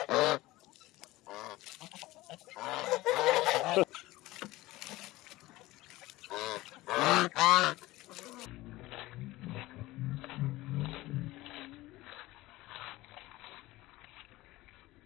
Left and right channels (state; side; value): quieter; right; 18.6 dB